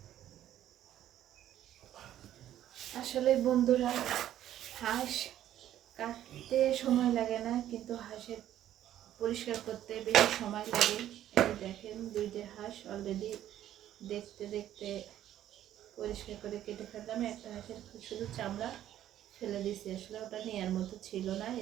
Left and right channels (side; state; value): left; quieter; 12.0 dB